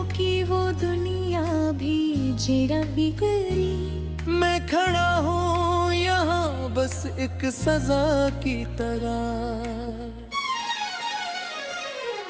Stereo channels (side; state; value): both; identical; correlation 1.00